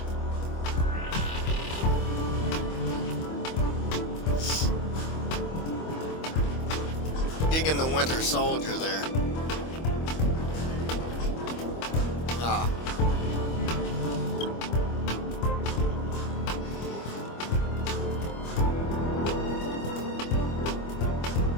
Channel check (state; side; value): late; right; 25 ms